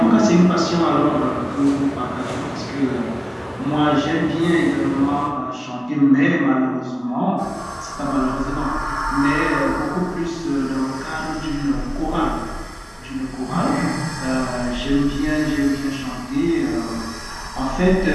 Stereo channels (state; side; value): identical; both; correlation 1.00